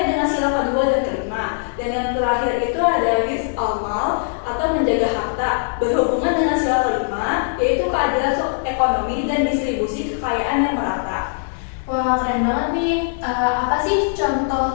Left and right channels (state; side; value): silent; right; digital silence